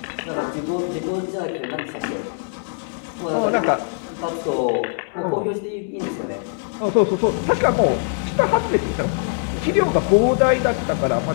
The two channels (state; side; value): silent; right; 64 dB below the other